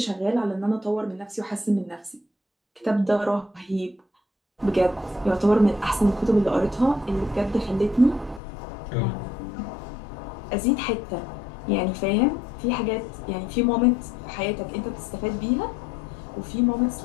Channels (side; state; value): right; drops out; at 8.4 s